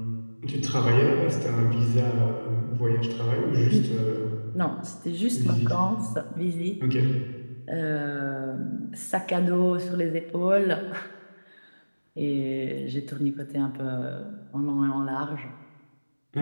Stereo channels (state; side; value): inverted; both; correlation -1.00